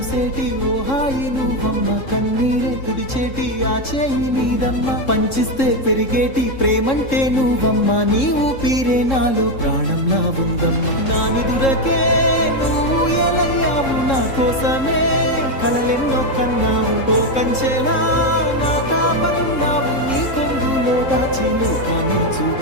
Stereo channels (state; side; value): late; right; 3.7 ms